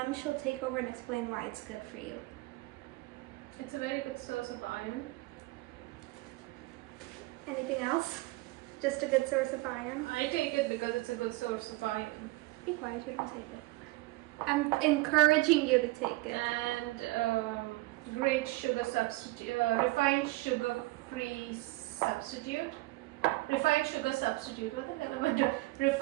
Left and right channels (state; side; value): quieter; left; 21.6 dB